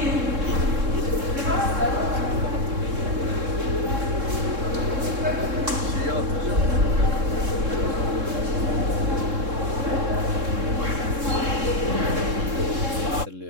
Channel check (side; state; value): left; late; 3.7 ms